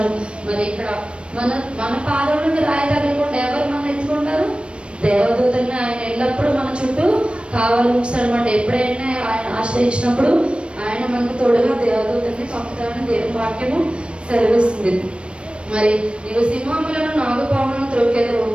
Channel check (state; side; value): late; left; 0.058 ms